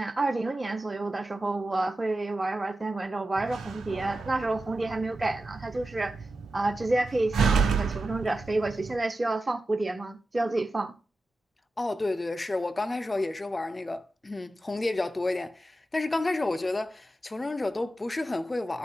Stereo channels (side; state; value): both; normal; correlation 0.92